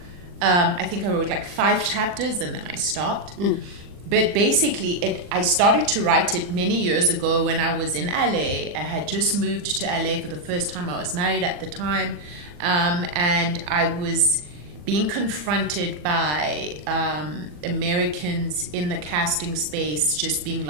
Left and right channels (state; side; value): late; left; 40 ms